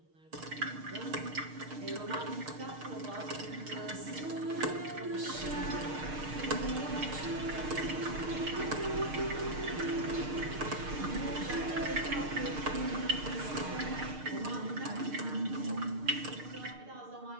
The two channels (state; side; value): late; left; 6.6 ms